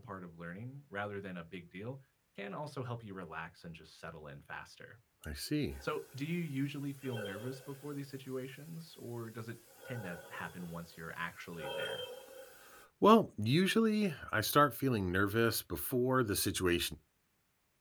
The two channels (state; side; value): identical; both; correlation 1.00